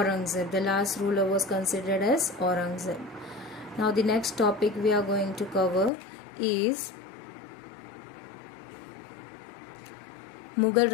The last ruler was considered as Aurangzeb. Now the next topic we are going to cover is Mughal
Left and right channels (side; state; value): right; drops out; at 5.9 s